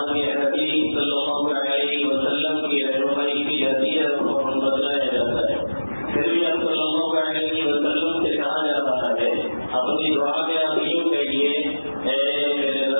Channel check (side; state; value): both; inverted; correlation -1.00